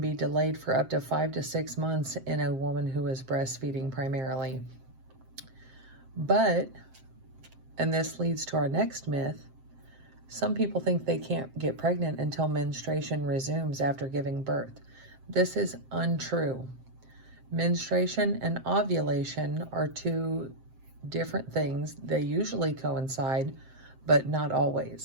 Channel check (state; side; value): late; left; 7.6 ms